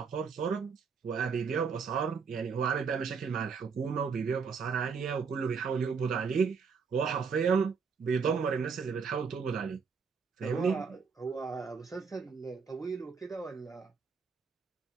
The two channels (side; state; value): left; quieter; 5.7 dB